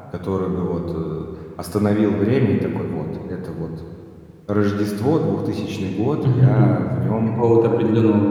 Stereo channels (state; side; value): identical; both; correlation 1.00